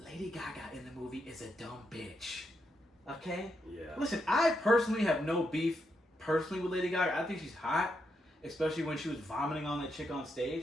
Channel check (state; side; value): normal; both; correlation 0.82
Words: Gaga in the movie is a dumb bitch. Okay? Yeah. Listen, I personally have no beef personally with Lady Gaga. I think she's hot, especially when she was vomiting on that chick on